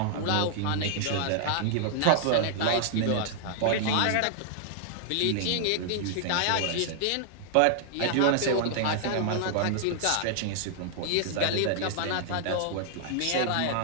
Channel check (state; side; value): different; both; correlation -0.01